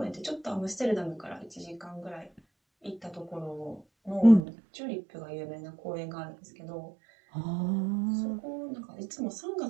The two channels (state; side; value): drops out; left; at 4.4 s